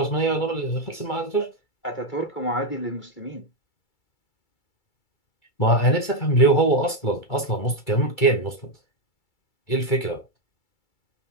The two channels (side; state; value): right; late; 2.3 ms